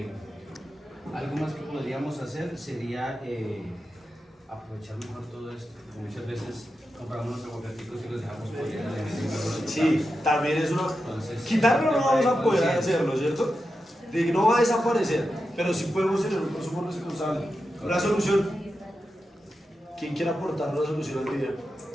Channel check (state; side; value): normal; both; correlation 0.89